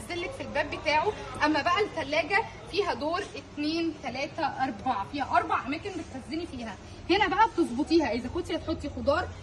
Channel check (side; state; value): both; identical; correlation 1.00